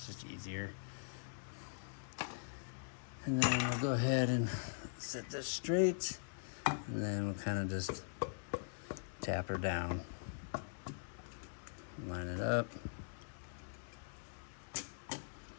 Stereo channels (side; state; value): right; silent; digital silence